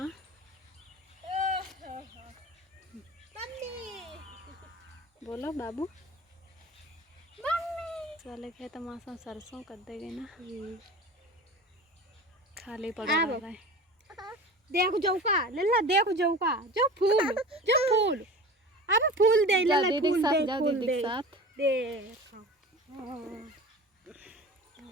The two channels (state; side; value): normal; both; correlation 0.35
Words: बोलो बाबू। वाले खेत मौसम सरसों कर देंगे ना, खाली पड़ा रहा है। देखो जौका लल्ला, देखो जौका, जो फूल, जो फूल, अब फूल दे लल्ला, फूल दे, फूल दे, देखो।